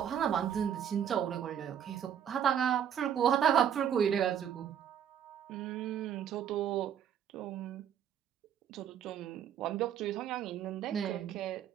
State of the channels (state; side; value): quieter; left; 9.1 dB